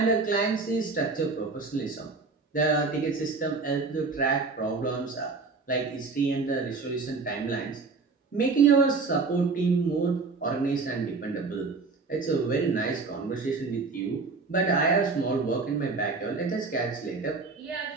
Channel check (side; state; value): left; quieter; 4.2 dB